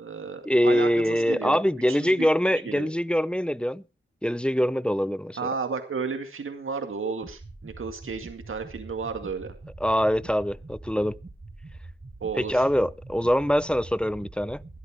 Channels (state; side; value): normal; both; correlation 0.88